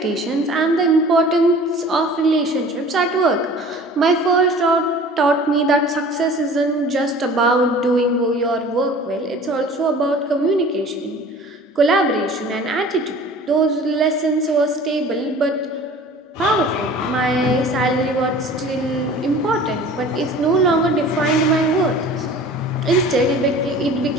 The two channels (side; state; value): both; normal; correlation 0.44